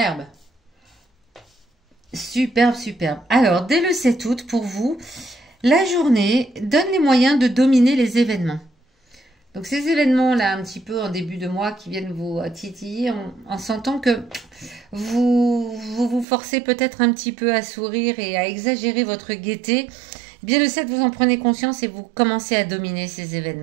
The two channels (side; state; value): left; drops out; at 16.2 s